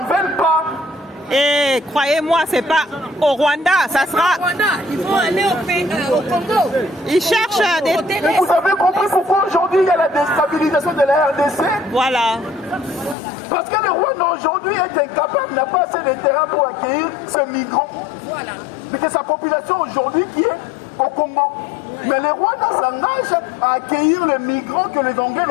veulent pas. Et croyez-moi, c'est pas au Rwanda, ça sera. Ils vont aller au Congo. Ils cherchent des. Et vous avez compris pourquoi aujourd'hui il y a la déstabilisation de la RDC? Voilà. Parce que le Rwanda aujourd'hui est incapable, n'a pas assez de terrain pour accueillir ces migrants. Voilà. Mais que sa population aujourd'hui qui est au Congo. Mais les Rwandais s'engagent à accueillir les migrants que les Anglais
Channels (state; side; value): drops out; right; at 13.2 s